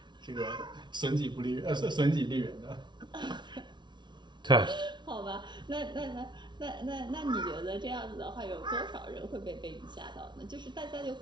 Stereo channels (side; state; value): left; late; 0.22 ms